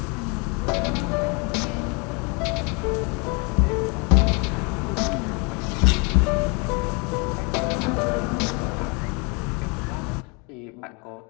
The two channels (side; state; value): right; quieter; 31.7 dB